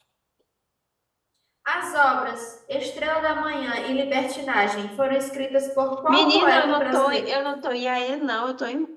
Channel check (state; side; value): identical; both; correlation 1.00